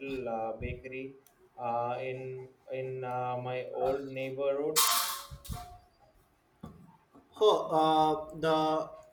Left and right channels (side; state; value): both; identical; correlation 1.00